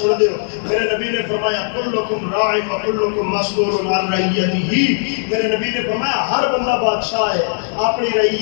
دے ہو۔ میرے نبی نے فرمایا کلکم راع و کلکم مسئول عن رعیتہ، میرے نبی نے فرمایا ہر بندہ بادشاہ ہے اپنی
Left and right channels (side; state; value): right; silent; 62 dB below the other